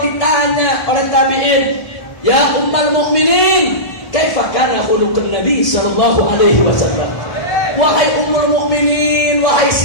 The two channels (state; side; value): late; right; 1.7 ms